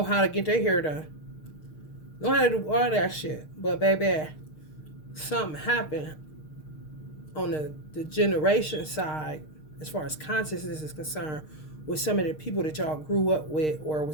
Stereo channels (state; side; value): late; right; 6.5 ms